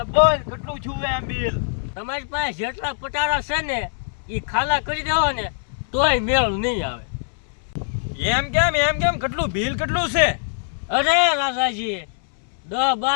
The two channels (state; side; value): silent; right; 64 dB below the other